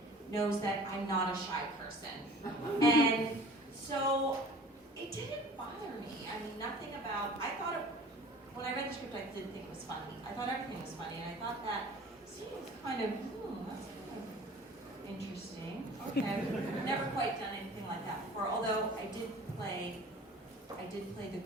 knows that I'm not a shy person. And so it didn't bother me. I mean, nothing about, when I read the script, I didn't think it was funny. I thought everything was funny, and I thought that scene was kind of, that's kind of interesting. Okay, I've never quite done anything like that before, although I did play the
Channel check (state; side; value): normal; both; correlation 0.45